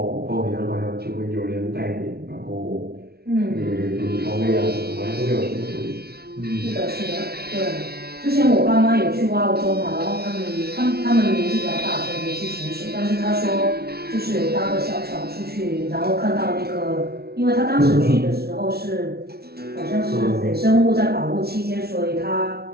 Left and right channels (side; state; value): left; late; 0.45 ms